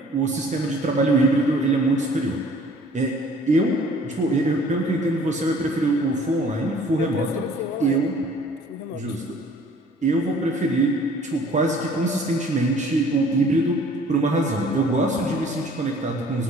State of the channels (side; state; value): both; normal; correlation 0.53